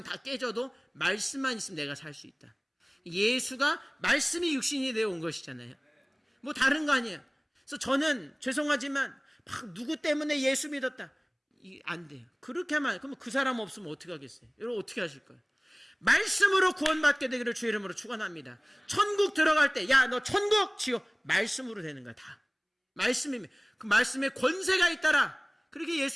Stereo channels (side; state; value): both; identical; correlation 1.00